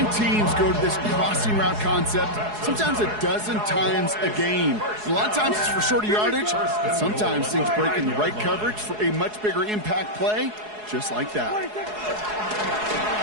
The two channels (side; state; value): left; late; 4.7 ms